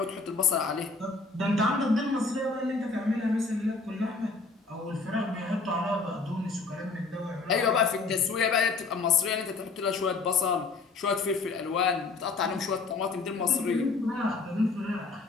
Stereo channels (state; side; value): quieter; right; 4.0 dB